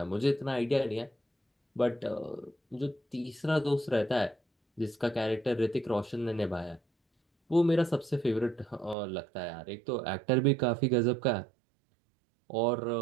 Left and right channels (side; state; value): left; drops out; at 9.0 s